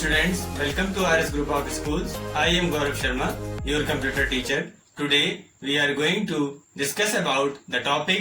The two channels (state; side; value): identical; both; correlation 1.00